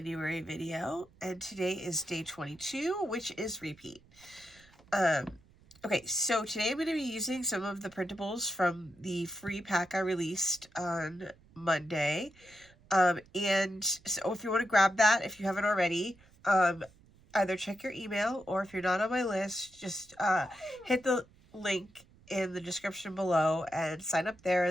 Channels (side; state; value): right; noise; rumble, 27 dB below the sound